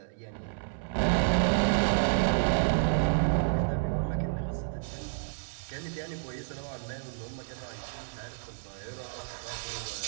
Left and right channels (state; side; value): silent; left; 58 dB below the other